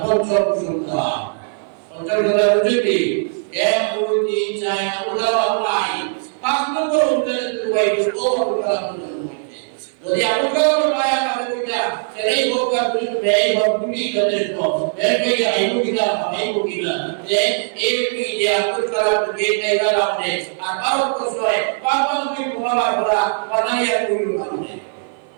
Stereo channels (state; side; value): silent; left; 57 dB below the other